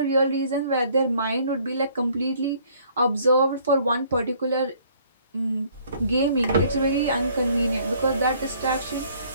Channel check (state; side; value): inverted; both; correlation -0.60